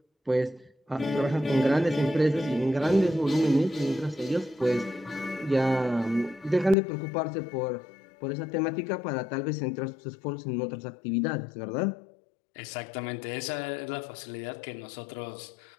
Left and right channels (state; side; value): drops out; right; at 6.8 s